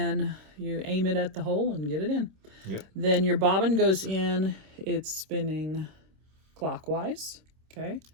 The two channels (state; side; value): late; left; 26 ms